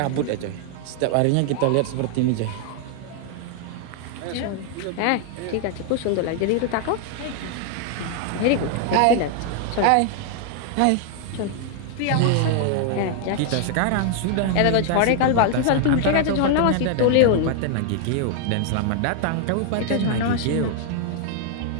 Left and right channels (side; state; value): both; different; correlation 0.00